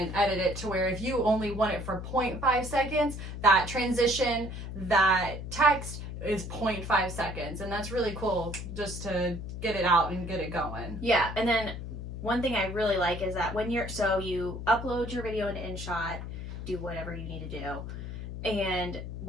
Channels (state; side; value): noise; left; hum, 7 dB below the sound